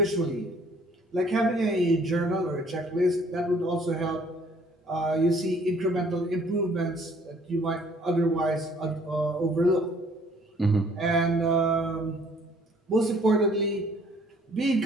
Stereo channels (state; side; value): normal; both; correlation 0.59